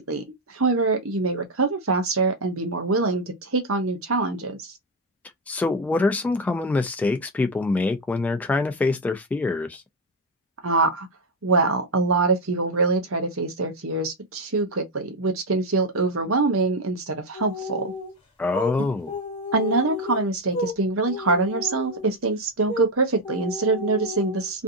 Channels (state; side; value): normal; both; correlation 0.07